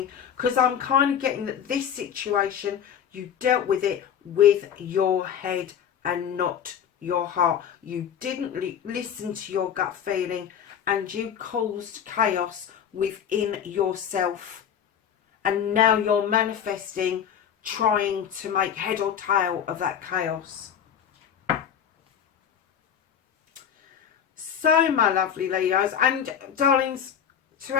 Because I'm kind of getting that this situation, you dealt with it with your head and not your heart. You didn't listen to your gut feeling, and you caused chaos within yourself. And now you're manifesting, trying to make head or tail of that chaos. So, my lovely Leos and darlings, to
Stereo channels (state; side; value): quieter; right; 8.5 dB